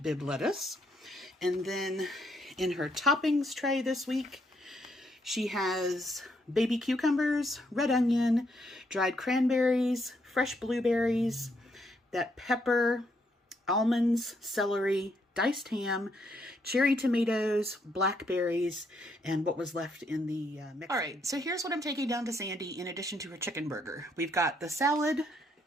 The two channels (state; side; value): normal; both; correlation 0.74